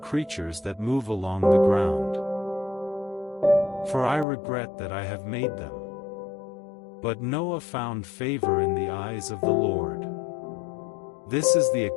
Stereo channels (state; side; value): drops out; right; at 4.2 s